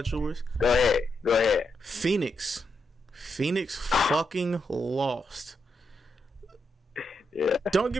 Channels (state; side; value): normal; both; correlation 0.83